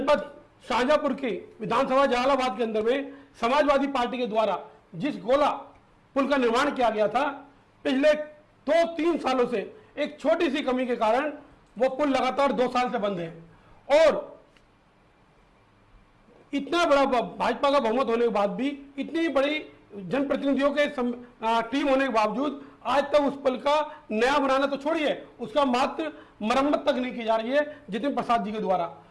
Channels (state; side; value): identical; both; correlation 1.00